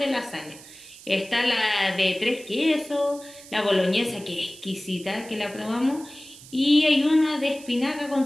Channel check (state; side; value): noise; right; hiss, 19 dB below the sound